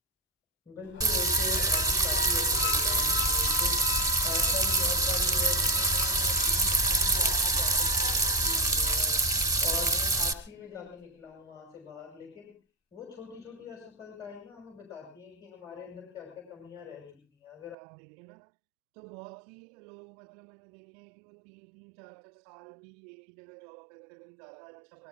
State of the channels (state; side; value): drops out; left; at 17.8 s